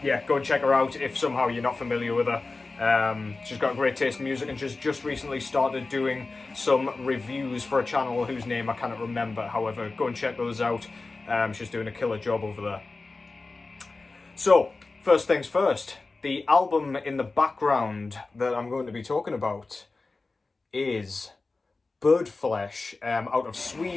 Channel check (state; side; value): quieter; right; 3.6 dB